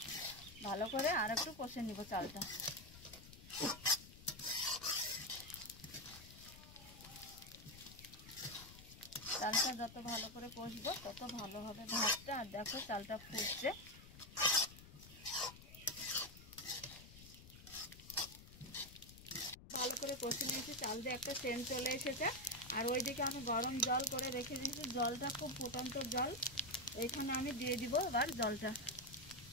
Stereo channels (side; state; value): left; noise; rumble, 17 dB below the sound